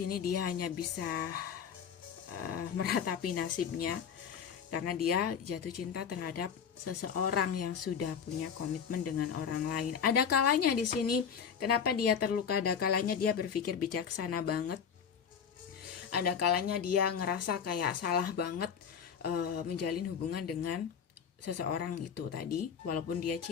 dia hanya bisa meratapi nasibnya karena dia jatuh cinta terhadap seseorang yang sudah punya komitmen dengan orang lain. Ada kalanya di sini kenapa dia terluka, ada kalanya dia berpikir bijaksana banget. Ada kalanya dia ngerasa kayak salah banget menjalin hubungan dengan seseorang itu tadi, walaupun dia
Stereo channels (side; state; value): right; quieter; 7.3 dB